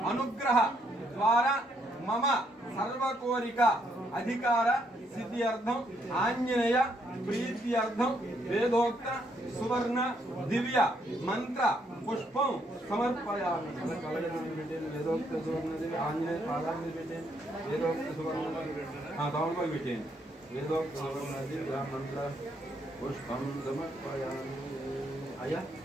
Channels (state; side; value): normal; both; correlation 0.73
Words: అనుగ్రహ ద్వారా మమ సర్వకోరిక అధికార సిద్ధ్యర్థం ఆంజనేయ ప్రీత్యర్థం వేదోక్త సువర్ణ దివ్య మంత్ర పుష్పం సమర్పయామి. వేదోక్త సువర్ణ దివ్య ఆంజనేయ పాదాన్ని పెట్టేయండి. వేదోక్త సువర్ణ తమలపాకు పెట్టేయండి. వేదోక్త సువర్ణ దివ్య మంత్ర పుష్పం సమర్పయామి. అయ్యా